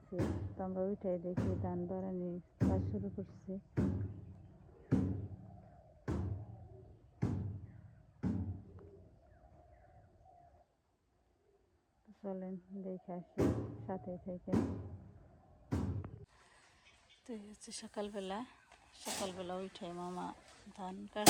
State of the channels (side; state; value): both; identical; correlation 1.00